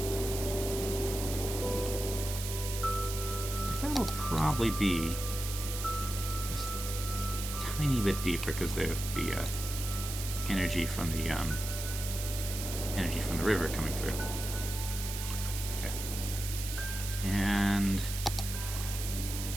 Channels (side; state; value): right; noise; hiss, 6 dB below the sound